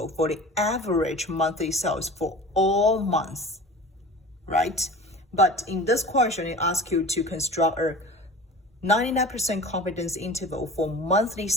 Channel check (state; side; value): normal; both; correlation 0.38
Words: for the average monthly sales for all months, right? But in this question, it asks you to construct a 99% confidence interval for monthly